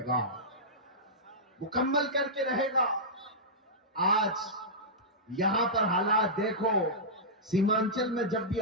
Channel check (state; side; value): normal; both; correlation -0.14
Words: گا، مکمل کر کے رہے گا۔ آج یہاں پر حالات دیکھو، سیمانچل میں جب بھی